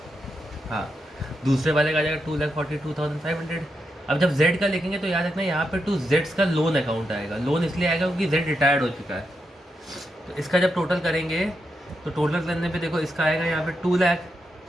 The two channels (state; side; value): normal; both; correlation 0.85